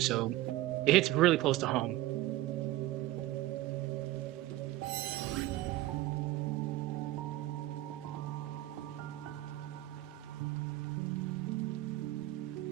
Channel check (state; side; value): quieter; left; 16.3 dB